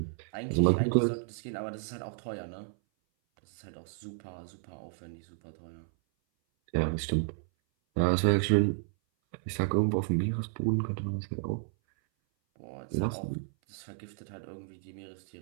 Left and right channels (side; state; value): left; silent; 56 dB below the other